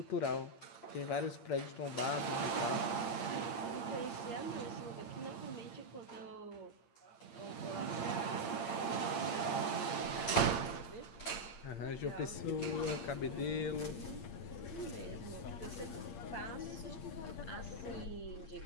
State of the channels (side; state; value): right; late; 8.7 ms